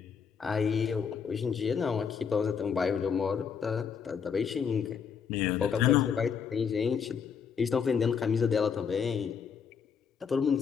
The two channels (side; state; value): right; quieter; 6.7 dB